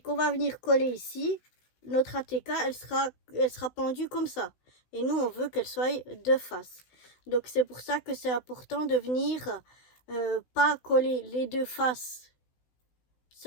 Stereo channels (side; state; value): right; late; 16 ms